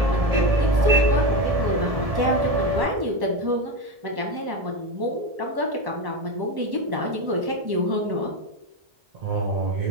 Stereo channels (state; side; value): late; left; 1.1 ms